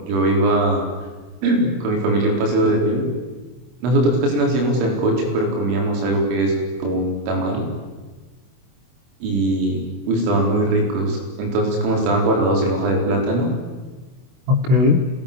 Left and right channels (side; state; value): left; late; 24 ms